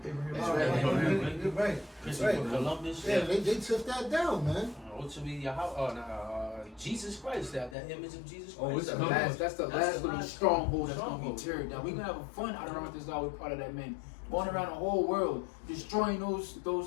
Right. Columbus. Yeah, they took that down, man. Jesus Christ, that image of Jesus Christ. Oh, that's the last little stronghold that's gonna be teared down. We're gonna have fun out around this law. We're part of that, man. Going around the whole world, destroying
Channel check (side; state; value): right; drops out; at 7.8 s